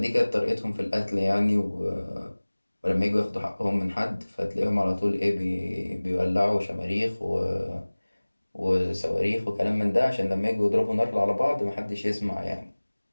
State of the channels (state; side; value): inverted; both; correlation -1.00